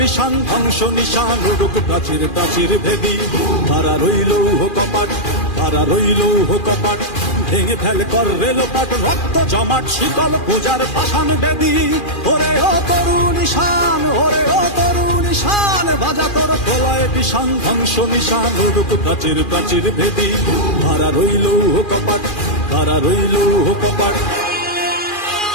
ধ্বংস নিশান উড়ুক প্রাচীর প্রাচীর ভেদী। খাড়া রইল কপাট, খাড়া রইল কপাট, ভেঙে ফেল কর রেলোপাট, রক্ত জমাট শিকল পূজার পাষাণ বেদী। ওরে ও তরুণ ঈশান, ওরে ও তরুণ ঈশান, বাজা তোর প্রলয় বিষান, ধ্বংস নিশান উড়ুক প্রাচীর প্রাচীর ভেদী। খাড়া রইল কপাট, খাড়া রইল কপাট।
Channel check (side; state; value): right; late; 2.4 ms